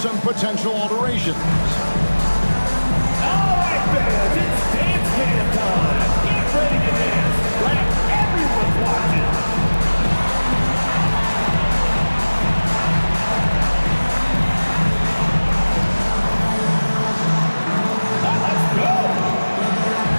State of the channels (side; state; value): both; inverted; correlation -1.00